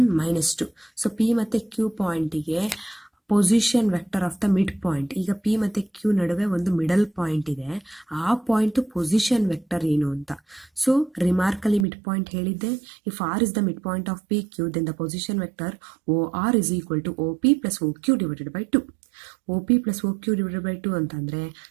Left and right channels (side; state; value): left; drops out; at 11.9 s